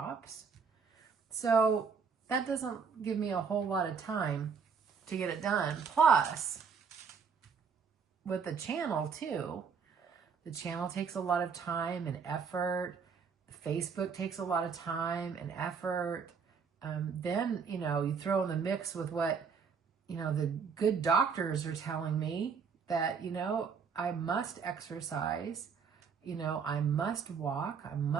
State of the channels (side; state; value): left; quieter; 6.0 dB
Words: So that doesn't give me a whole lot of time to get it done. Plus, with the channel too, the channel takes a lot of time and effort. Facebook takes a lot of time and effort. Then, you know, you throw in the mix with what, you know, the good doctors are telling me that, you know, I must exercise, you know, I must walk, I